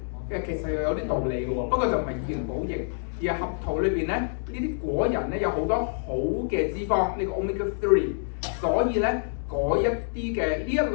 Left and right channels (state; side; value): silent; right; digital silence